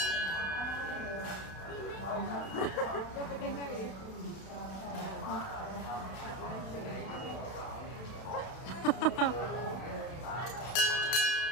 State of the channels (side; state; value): right; late; 32 ms